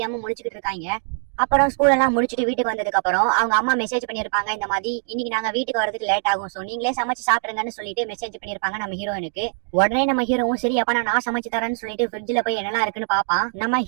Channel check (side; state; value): left; silent; digital silence